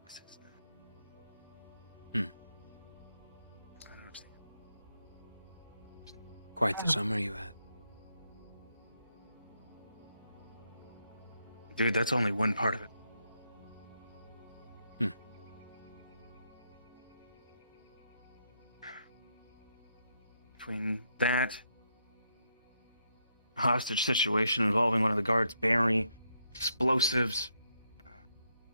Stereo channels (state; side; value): inverted; both; correlation -0.79